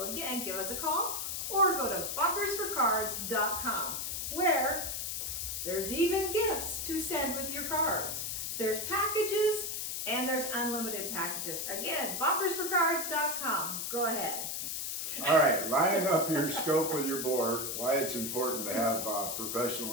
again, give us a call or go to bunkersforcards.com, where there's even gifts to send with your cards. There's packages and there's unlimited packages. Again, bunkersforcards.com. Go ahead. All right, lining up your scope with your bore, why it's important to have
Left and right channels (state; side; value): noise; left; hiss, 3 dB below the sound